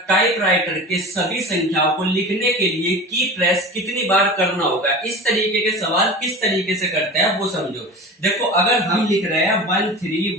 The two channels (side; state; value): both; normal; correlation 0.33